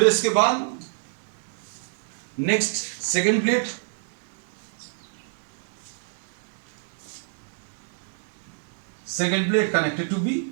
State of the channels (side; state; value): left; silent; digital silence